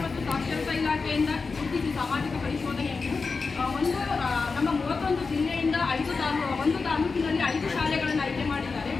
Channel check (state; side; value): quieter; right; 4.5 dB